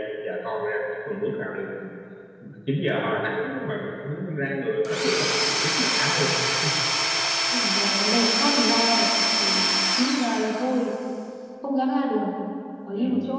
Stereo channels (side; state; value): both; identical; correlation 1.00